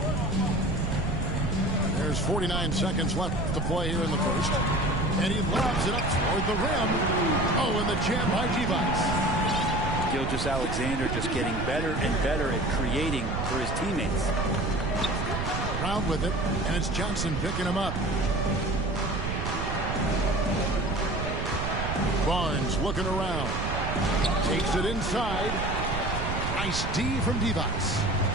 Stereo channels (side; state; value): right; noise; rumble, 3 dB below the sound